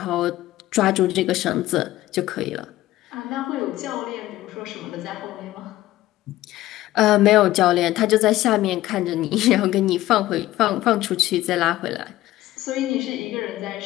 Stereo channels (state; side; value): quieter; right; 15.7 dB